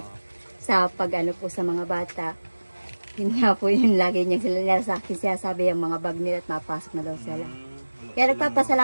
sa pag-ano po sa mga bata. Yun nga po yun lagi niya sila sa akin siya sabi yung mga bag nila at mapasok na daw sila. Kaya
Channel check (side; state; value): both; inverted; correlation -1.00